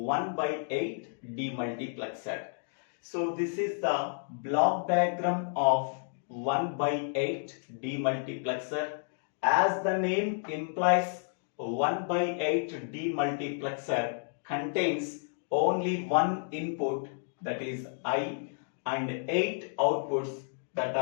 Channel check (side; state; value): right; silent; digital silence